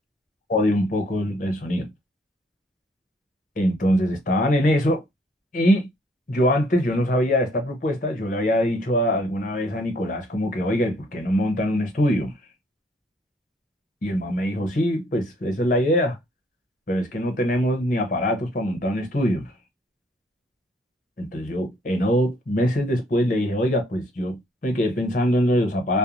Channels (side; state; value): both; normal; correlation 0.66